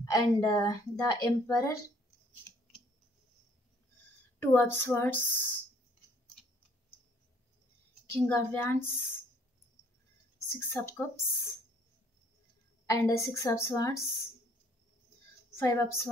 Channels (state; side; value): normal; both; correlation 0.61